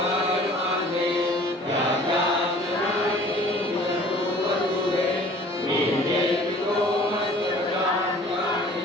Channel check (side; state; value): both; normal; correlation 0.50